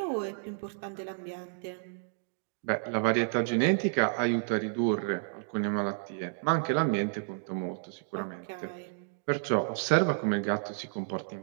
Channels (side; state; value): left; silent; digital silence